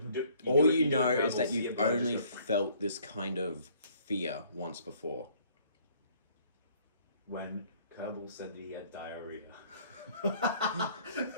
All you know is that you've only felt this kind of fear once before. When Kerbal said that he had diarrhea.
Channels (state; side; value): inverted; both; correlation -0.60